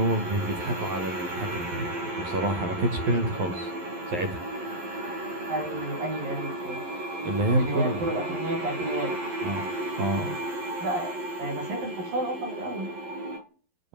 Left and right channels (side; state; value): left; late; 11 ms